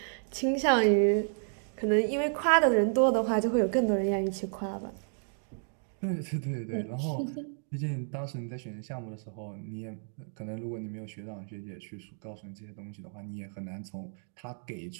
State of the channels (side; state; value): left; silent; 57 dB below the other